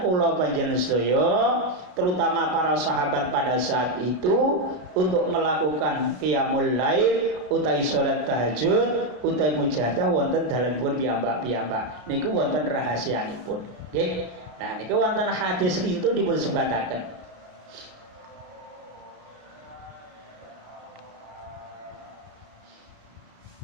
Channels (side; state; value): left; late; 33 ms